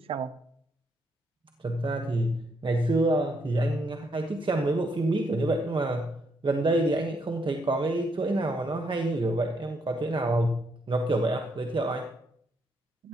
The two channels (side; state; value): both; normal; correlation 0.75